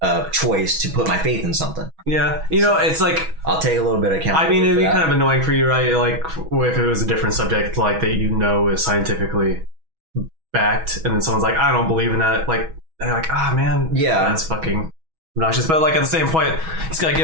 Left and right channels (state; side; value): late; left; 6.2 ms